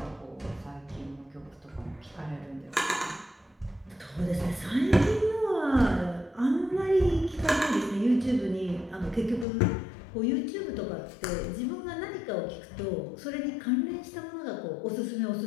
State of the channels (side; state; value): right; drops out; at 9.5 s